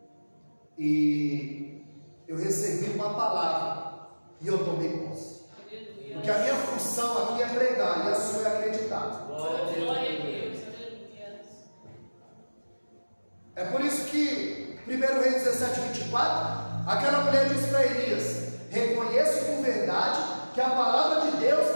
e eu recebi uma palavra e eu tomei posse. Porque a minha função aqui é pregar e a sua é acreditar. Glória a Deus. É por isso que 1 Reis 17, 24 Aquela mulher disse para Elias: reconheço por verdade que a palavra de Deus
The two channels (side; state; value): both; inverted; correlation -1.00